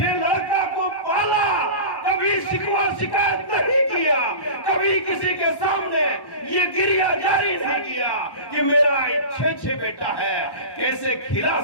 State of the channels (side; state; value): right; late; 1.1 ms